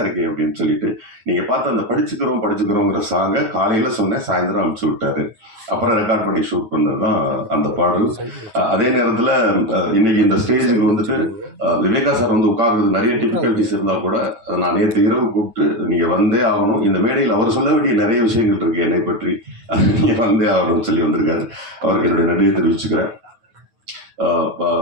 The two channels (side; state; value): left; late; 9.4 ms